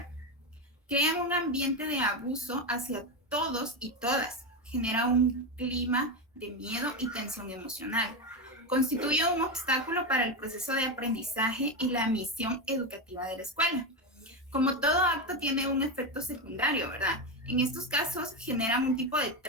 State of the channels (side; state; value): both; normal; correlation 0.13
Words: crean un ambiente de abuso hacia todos y todas, genera un clima de miedo y tensión emocional, constituye un obstáculo para el proceso de aprendizaje y la misión educativa de la escuela. Como todo acto tiene un efecto secundario, ¿verdad? En estos casos generan un tipo de